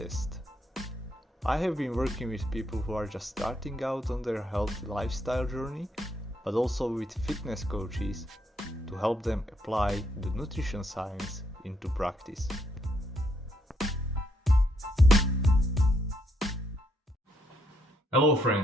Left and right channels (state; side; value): normal; both; correlation 0.74